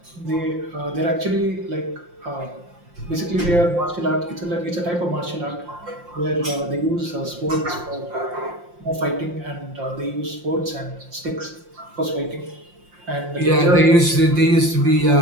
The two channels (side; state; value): left; late; 5.7 ms